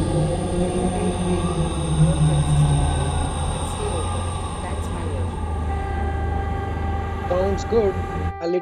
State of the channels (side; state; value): both; identical; correlation 1.00